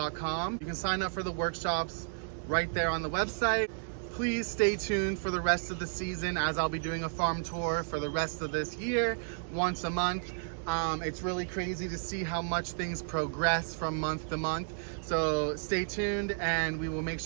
You can sign up for the workshops right there on the website. Please stay tuned for the rest of the season, as I'll be doing a farm tour for the rest of this year, once a month. It's really crazy to see how much things progress from month to month. So stay tuned, and we will make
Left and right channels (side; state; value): left; silent; digital silence